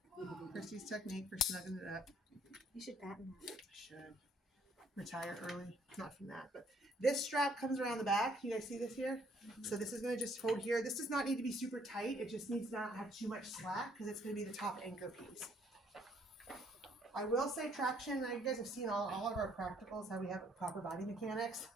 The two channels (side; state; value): both; normal; correlation 0.64